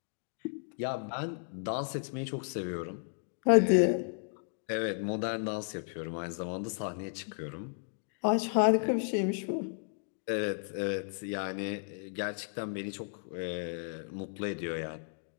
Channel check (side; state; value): right; silent; 55 dB below the other